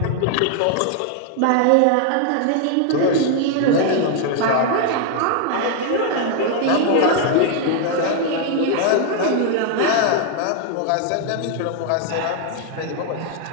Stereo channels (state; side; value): different; both; correlation 0.00